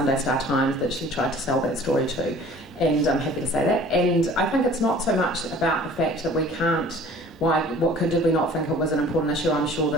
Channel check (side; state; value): both; normal; correlation 0.48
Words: Star Times that she tried to sell that story to, and I'm happy to say that, and I think it's not so much about the fact that we can't, did we not think it was an important issue? I'm sure